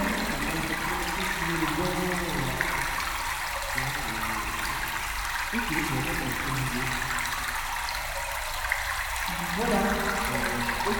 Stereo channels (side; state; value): both; identical; correlation 1.00